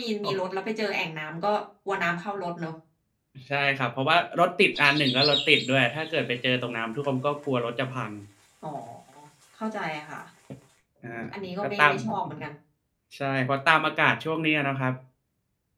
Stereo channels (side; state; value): both; identical; correlation 1.00